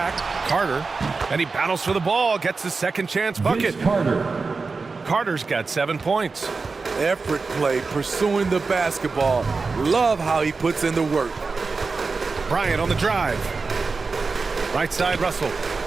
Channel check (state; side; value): quieter; left; 4.3 dB